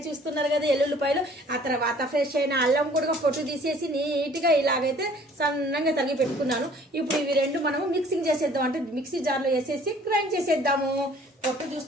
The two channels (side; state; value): both; normal; correlation 0.54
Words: చూస్తున్నారు కదా ఎల్లుల్లిపాయలు. ఆ తర్వాత ఫ్రెష్ అయిన అల్లం కూడా పొట్టు తీసేసి నీట్గా ఇలాగైతే సన్నంగా తరిగి పెట్టుకున్నాను. ఇప్పుడు ఇవి రెండు మనము మిక్సింగ్ చేసేద్దాం, అంటే మిక్సీ జార్లో వేసేసి గ్రైండ్ చేసేద్దాము. పొట్టు